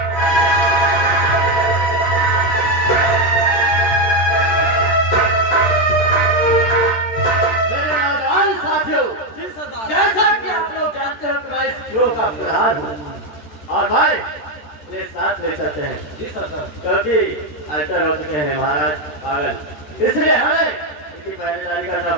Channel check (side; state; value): right; late; 13 ms